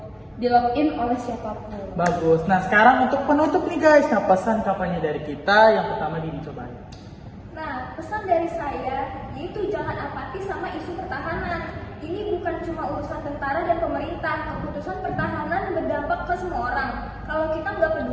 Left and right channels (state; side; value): identical; both; correlation 1.00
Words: login oleh siapapun. Bagus. Nah sekarang untuk penutup nih guys, nah pesan kampanye dari kita yang pertama dicobain. Nah, pesan dari saya yaitu jangan apatis sama isu pertahanan. Ini bukan cuma urusan tentara dan pemerintah. Keputusan pertahanan berdampak ke semua orang. Kalau kita nggak